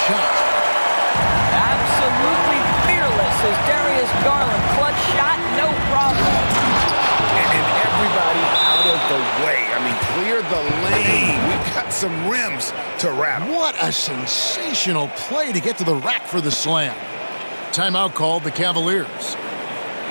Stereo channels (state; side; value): inverted; both; correlation -1.00